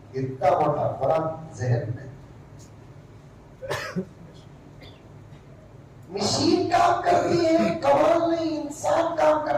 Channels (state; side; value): identical; both; correlation 1.00